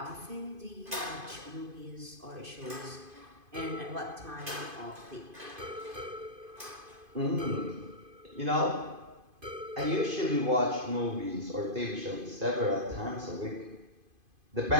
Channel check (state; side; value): late; left; 2.5 ms